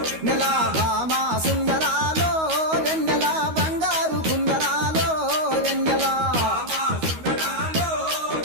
నెల భామా సుందరాలో వెన్నెల బంగారు కుందనాలో వెన్నెల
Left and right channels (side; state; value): left; late; 13 ms